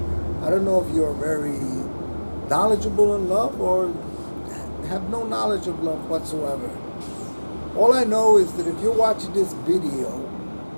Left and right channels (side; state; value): both; inverted; correlation -1.00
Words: I don't know if you're very knowledgeable in love or have no knowledge of love whatsoever. All I know is that if you're watching this video,